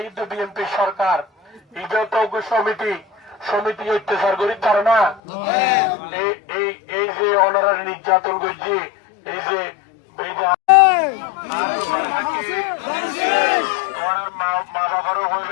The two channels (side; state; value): right; drops out; at 5.2 s